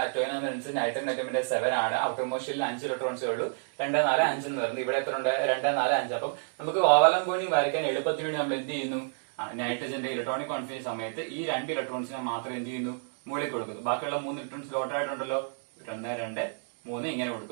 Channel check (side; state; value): left; silent; digital silence